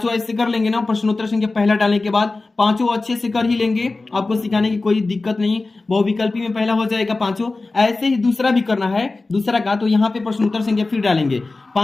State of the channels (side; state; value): right; quieter; 3.4 dB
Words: ऐसे कर लेंगे ना। प्रश्नोत्तर संख्या पहला डालने के बाद पांचों अच्छे से कर ही लेंगे, आपको सिखाने की कोई दिक्कत नहीं। बहुविकल्पी में पहला हो जाएगा पांचों। ऐसे ही दूसरा भी करना है, दूसरा का। तो यहाँ पे प्रश्नोत्तर संख्या फिर डालेंगे